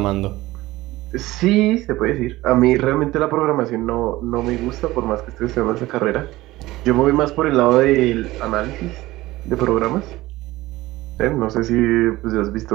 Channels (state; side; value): quieter; left; 18.0 dB